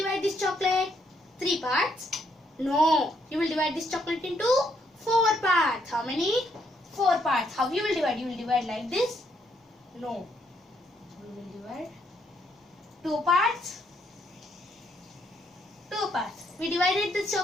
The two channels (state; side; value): normal; both; correlation 0.73